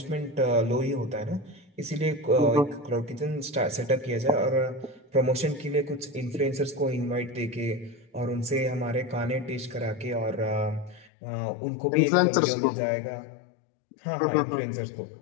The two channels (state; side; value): drops out; right; at 11.1 s